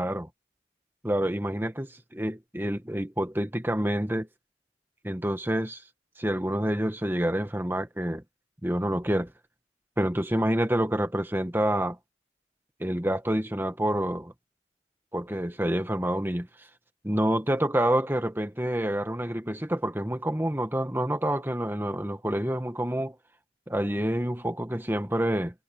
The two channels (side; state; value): both; normal; correlation 0.90